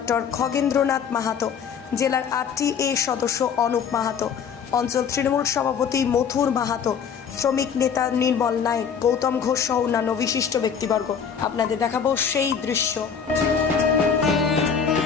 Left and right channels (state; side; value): quieter; right; 7.0 dB